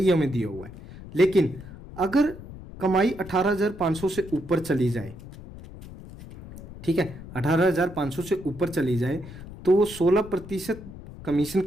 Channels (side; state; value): left; noise; rumble, 15 dB below the sound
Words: ये हमें दिया हुआ है। लेकिन अगर कमाई 18,500 से ऊपर चली जाए, ठीक है, 18,500 से ऊपर चली जाए तो वो 16% कमीशन